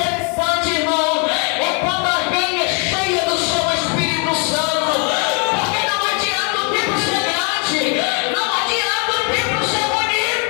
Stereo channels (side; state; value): right; quieter; 36.6 dB